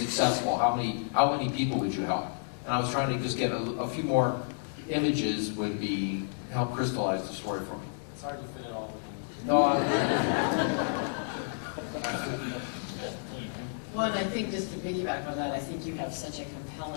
how many people would you help. And I was trying to just get a few more images would help crystallize the story for me. It's hard to fit it all in. No, Well, and I think just to piggyback on that, I think you have such a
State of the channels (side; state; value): right; silent; digital silence